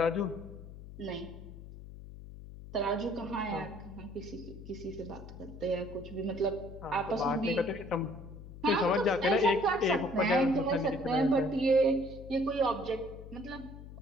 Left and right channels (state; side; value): noise; left; hum, 14 dB below the sound